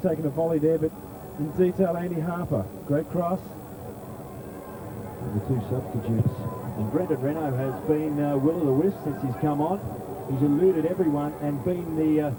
taken a volley there, but in detail, Andy Harper. Great cross. And the two substitutes. And Brendan Renault has been will o' the wisp since he's come on. He's eluded everyone and been the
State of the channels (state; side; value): identical; both; correlation 1.00